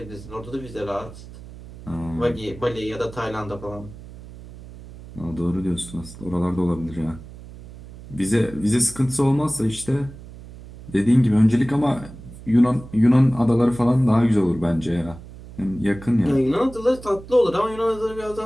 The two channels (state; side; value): noise; right; hum, 16 dB below the sound